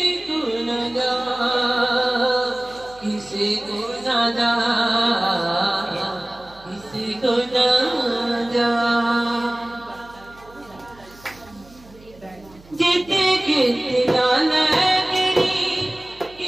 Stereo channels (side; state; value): right; noise; hum, 24 dB below the sound